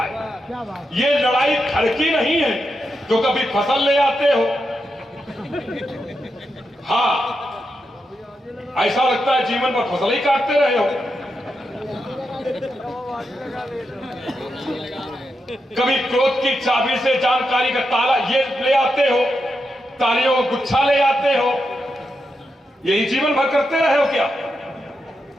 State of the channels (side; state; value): both; normal; correlation 0.86